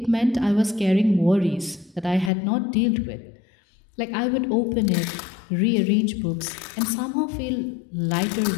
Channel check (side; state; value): right; drops out; at 2.3 s